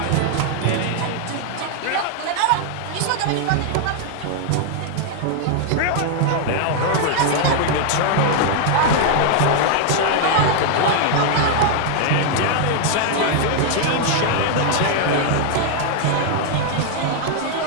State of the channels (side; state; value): both; different; correlation 0.00